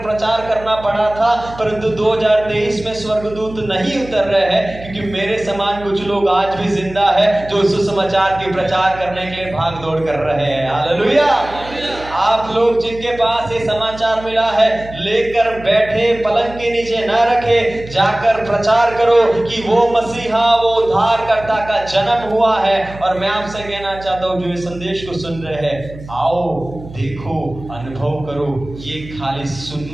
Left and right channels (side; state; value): right; noise; hum, 16 dB below the sound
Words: प्रचार करना पड़ा था, परंतु 2023 में स्वर्गदूत नहीं उतर रहे हैं, क्योंकि मेरे समान कुछ लोग आज भी जिंदा है जो सुसमाचार के प्रचार करने के लिए भाग दौड़ कर रहे हैं। हालेलुया। आप लोग जिनके पास ये समाचार मिला है, लेकर बैठे पलंग के नीचे न रखे, जाकर प्रचार करो कि वो मसीहा, वो उद्धारकर्ता का जन्म हुआ है। और मैं आपसे कहना चाहता हूँ जो इस संदेश को सुन रहे हैं, आओ देखो, अनुभव करो। ये खाली